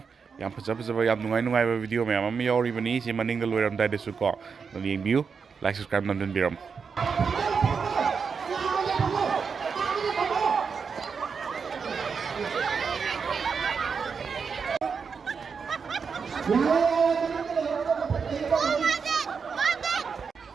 Yam Pazapa Yam Nungai video ma'am Yori Bani Simaning the lawyer Dada Suko the view like subscribe London Biram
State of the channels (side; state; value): left; quieter; 5.7 dB